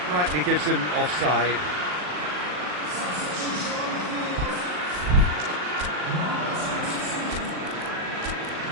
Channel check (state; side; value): late; left; 39 ms